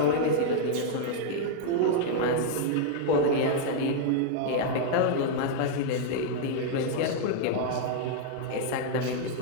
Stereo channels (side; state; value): both; different; correlation -0.01